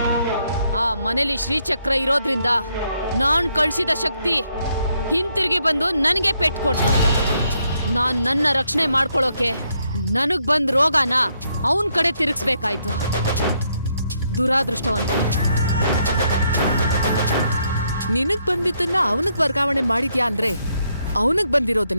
ಆ ಮನೇಲಿ ಶ್ರೀಚಕ್ರ ಇರೋದ್ರಿಂದ ನಾನ್ ಕಳ್ಸಿದ ಶಕ್ತಿ ಹಿಂತಿರುಗಿ ಬಂದು ನನಗೆ ಪೆಟ್ಟು ಕೊಟ್ಟು ನಾನ್ ನನ್ನ ರಕ್ಷಣೆ ಮಾಡ್ಕೊಳ್ಳೋಕೆ ನನಗ್ ಬಂದ್ ರೋಗನ ಅವನ್ ಕಡೆ ತಿರುಗಿಸ್ಬೇಕಾಯ್ತು. ದುರಾದೃಷ್ಟವಂತ. ನಿನಗ್ ಬಂದಿದ್ದನ್ನ ಅವನಿಗೆ ವರ್ಗಾವಣೆ ಮಾಡಿದ್ಯಾ ಅಂದ್ರೆ ಅವನಿಗೆ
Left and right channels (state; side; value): inverted; both; correlation -0.75